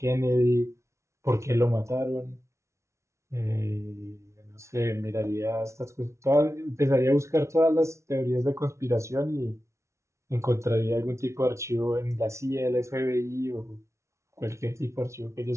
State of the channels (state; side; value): late; left; 0.14 ms